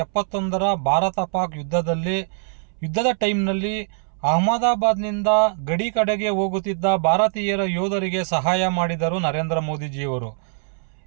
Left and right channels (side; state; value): left; silent; 64 dB below the other